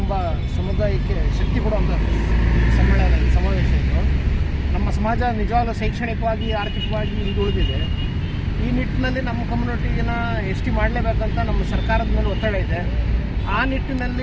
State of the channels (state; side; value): identical; both; correlation 1.00